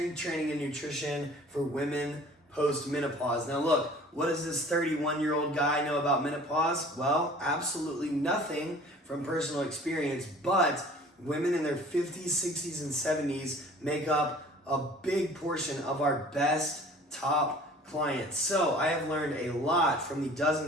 training and nutrition for women post-menopause. Now look, what does this 31-year-old guy know about menopause? Well, absolutely nothing from personal experience, but women in their 50s, 60s, and 70s make up a big portion of our best top clients. So I have learned a lot from the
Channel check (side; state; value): both; normal; correlation 0.48